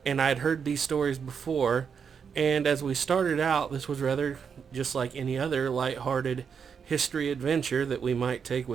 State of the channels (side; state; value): left; quieter; 6.6 dB